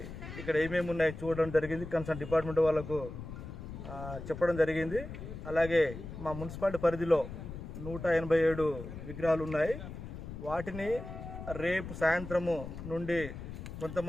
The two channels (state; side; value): noise; left; rumble, 10 dB below the sound